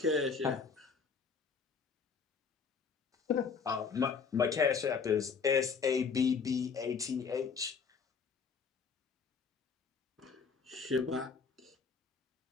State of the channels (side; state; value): right; quieter; 5.6 dB